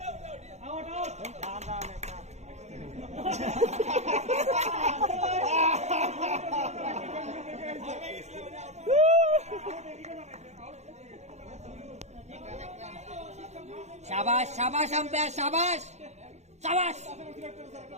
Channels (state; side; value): late; left; 0.33 ms